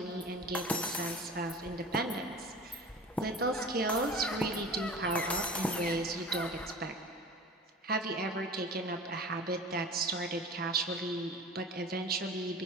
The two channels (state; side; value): normal; both; correlation 0.38